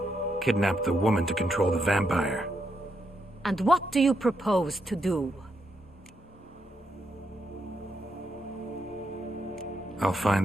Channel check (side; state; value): both; normal; correlation 0.80